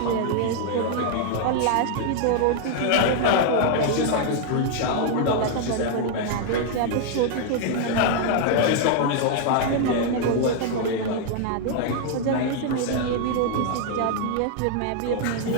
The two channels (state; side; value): different; both; correlation 0.00